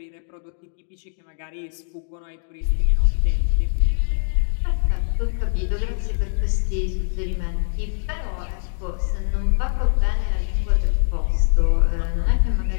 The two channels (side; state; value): right; silent; digital silence